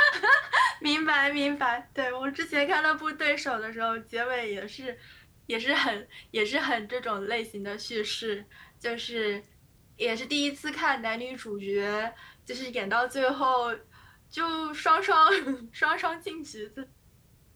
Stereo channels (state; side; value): identical; both; correlation 1.00